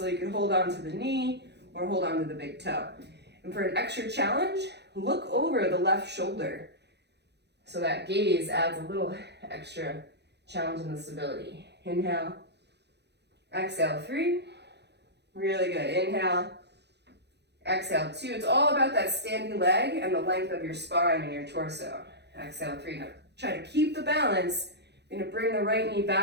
you can hold on to the knee or hold on to the big toe. And for an extra challenge, look over the left shoulder. So that gaze adds a little extra challenge in the stability. Inhale, exhale, 3. Really good. Inhale, exhale, 2. It's all about that standing leg and the length of your spine and your torso. Exhale, 3. Now try to keep the balance. You're gonna bring the right knee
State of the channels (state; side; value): late; left; 0.49 ms